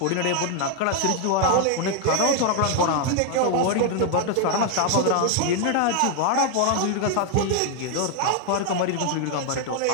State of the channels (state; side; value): different; both; correlation 0.00